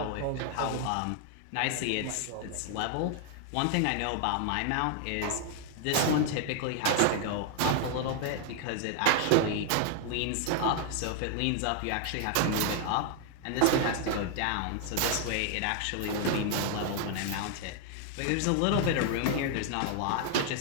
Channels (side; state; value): both; different; correlation 0.00